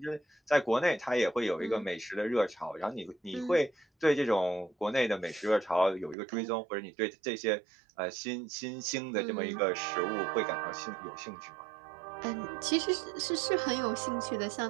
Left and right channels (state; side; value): drops out; left; at 6.2 s